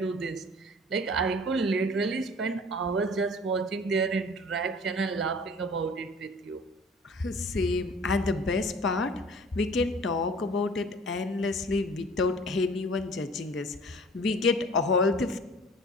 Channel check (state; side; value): normal; both; correlation 0.47